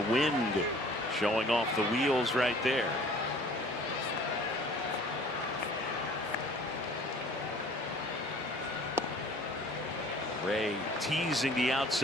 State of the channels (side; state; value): both; normal; correlation 0.50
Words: wind showing off the wheels right there. Ray teasing the